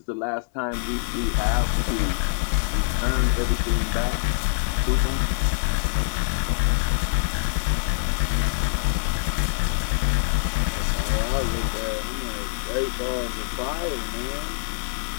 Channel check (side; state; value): right; silent; digital silence